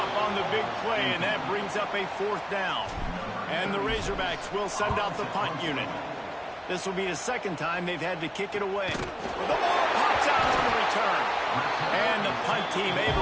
on the big play, and that brings up a fourth down. And the Razorbacks will send out the punt unit. This will be the second time they've had to kick it away. The ball pops out on the return. And the punt team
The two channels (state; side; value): identical; both; correlation 1.00